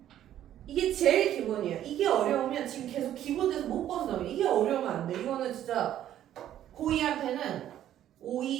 이게 제일 기본이야. 이게 어려우면 지금 계속 기본에서 못 벗어나면 이게 어려우면 안 돼. 이거는 진짜 고2한테는 5,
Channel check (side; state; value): left; quieter; 11.6 dB